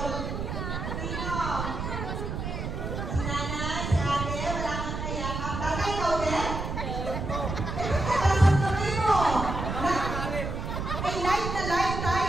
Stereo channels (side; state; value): right; noise; rumble, 4 dB below the sound